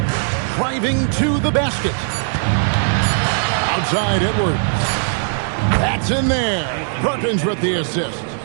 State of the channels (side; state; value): left; silent; digital silence